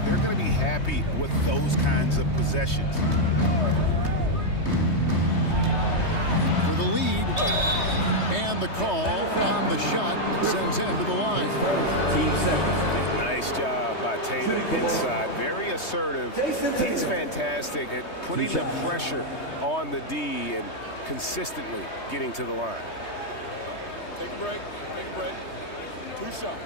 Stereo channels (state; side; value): late; right; 3.2 ms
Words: they're going to be happy with those kinds of possessions. For the lead. And the call on the shot that sends him to the line. Nice job by Tatum inside. Very assertive. He's fantastic at putting the pressure on the D and consistently getting to the line. Take a break. Take a break. 2 shots.